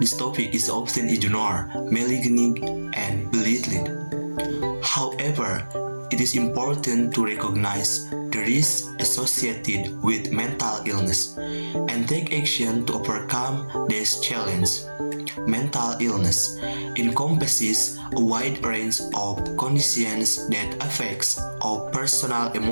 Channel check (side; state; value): both; inverted; correlation -1.00